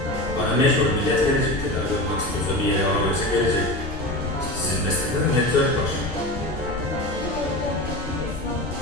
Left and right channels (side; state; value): left; noise; rumble, 11 dB below the sound